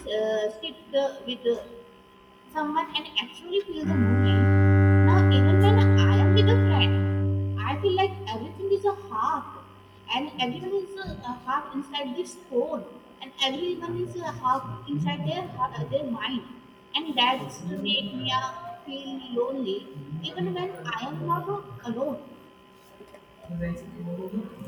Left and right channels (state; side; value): identical; both; correlation 1.00